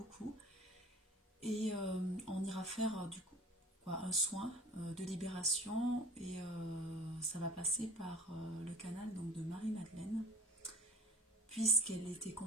Et on ira faire du coup un soin de libération et ça va passer par le canal donc, de Marie-Madeleine, puisqu'elle était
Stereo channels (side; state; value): both; normal; correlation 0.44